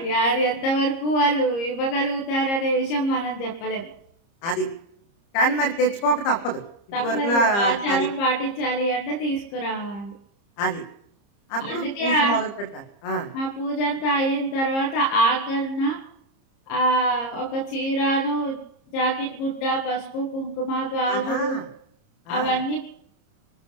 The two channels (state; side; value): late; right; 30 ms